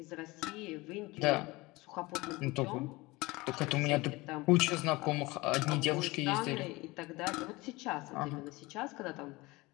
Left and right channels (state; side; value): quieter; right; 22.2 dB